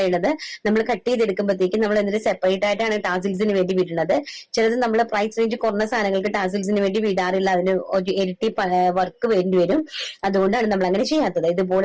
നമ്മൾ കട്ട് ചെയ്തെടുക്കുമ്പോഴത്തേക്കും നമ്മൾ എന്നിട്ട് സെപ്പറേറ്റ് ആയിട്ടാണ് ടാസിൽസിന് വേണ്ടി വിടുന്നത്. ചിലത് നമ്മൾ പ്രൈസ് റേഞ്ച് കുറഞ്ഞ സാധനങ്ങൾക്ക് ടാസിൽസിന് വേണ്ടി വിടാറില്ല, അതിന് ഒരു ഇരട്ടി വർക്ക് വേണ്ടി വരും. അതുകൊണ്ടാണ് നമ്മൾ അങ്ങനെ ചെയ്യാത്തത്.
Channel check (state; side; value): identical; both; correlation 1.00